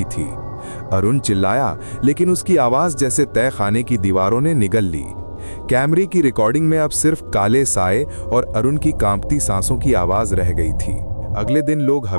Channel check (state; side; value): inverted; both; correlation -1.00